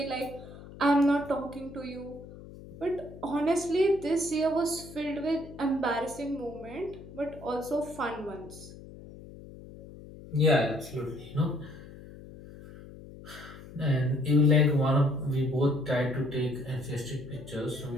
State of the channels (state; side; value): noise; left; hum, 16 dB below the sound